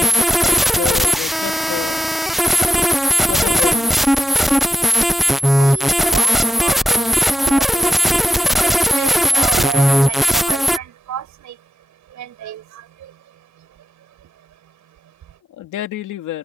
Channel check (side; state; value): both; normal; correlation 0.87